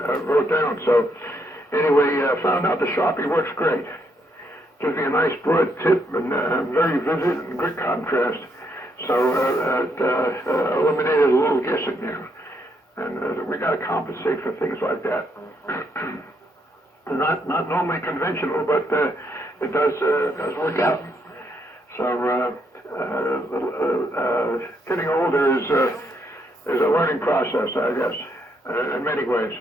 wrote down. So anyway, found out the Sharpie works great. Gives me a nice broad tip and very vivid and good contrast. So it eliminated a little guessing there. And we got to compensate for things like that. Not normally conventional, but it does work out. So getting older is a learning process, I guess, in many ways.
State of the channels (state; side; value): normal; both; correlation 0.75